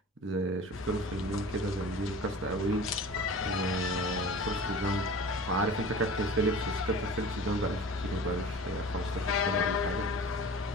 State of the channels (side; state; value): both; normal; correlation 0.39